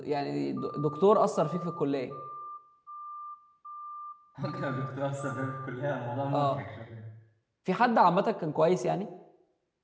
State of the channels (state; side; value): identical; both; correlation 1.00